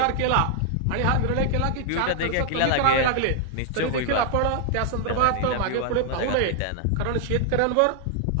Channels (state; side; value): different; both; correlation 0.00